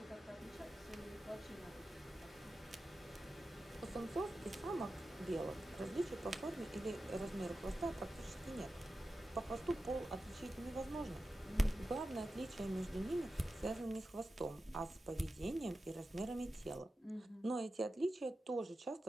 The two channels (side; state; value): both; normal; correlation 0.92